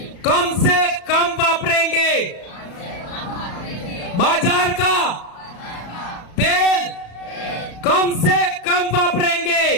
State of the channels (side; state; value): right; late; 34 ms